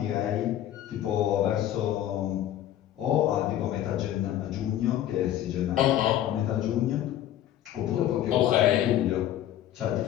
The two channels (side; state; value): right; quieter; 12.0 dB